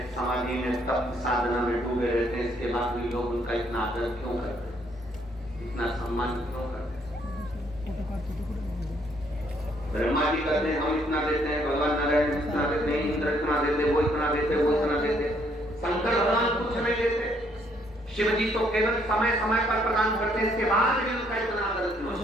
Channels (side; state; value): both; normal; correlation 0.68